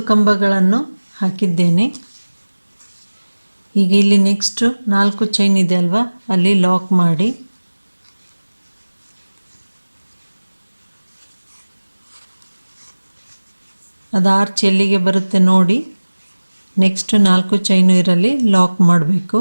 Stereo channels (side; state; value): both; inverted; correlation -1.00